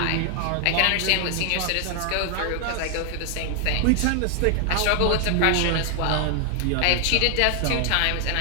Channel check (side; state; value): both; different; correlation 0.00